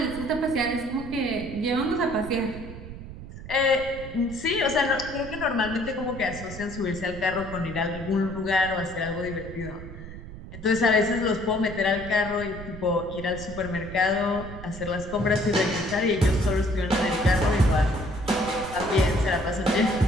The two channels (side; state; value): right; noise; rumble, 12 dB below the sound